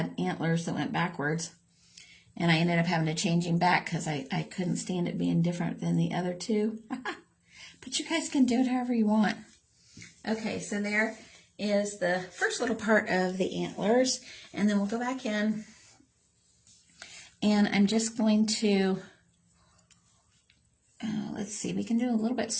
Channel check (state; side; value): identical; both; correlation 1.00